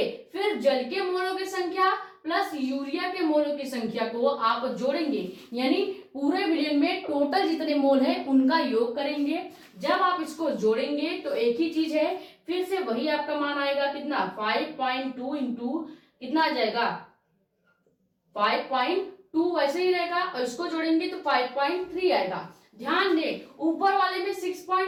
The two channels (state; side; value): identical; both; correlation 1.00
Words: फिर जल के मोलों की संख्या प्लस यूरिया के मोलों की संख्या को आप जोड़ेंगे, यानी पूरे विलयन में टोटल जितने मोल है उनका योग करेंगे। जब आप इसको जोड़ेंगे तो एक ही चीज है, फिर से वही आपका मान आएगा कितना 5.2 इंटू कितना आ जाएगा 5.2 वैसे ही रहेगा, और इसको जोड़ेंगे तो 5.3 आएगा। ध्यान दें ऊपर वाले में